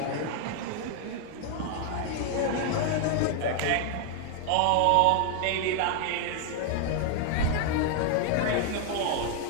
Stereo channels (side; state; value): both; different; correlation 0.00